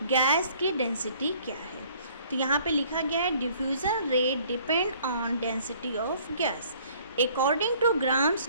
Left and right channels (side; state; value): both; inverted; correlation -0.57